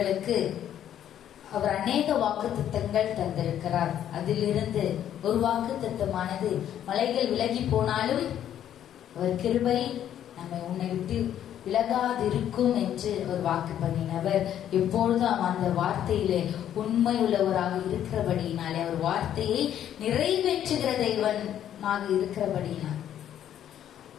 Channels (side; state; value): right; quieter; 10.6 dB